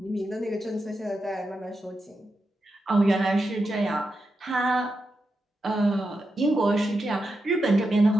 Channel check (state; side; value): normal; both; correlation 0.87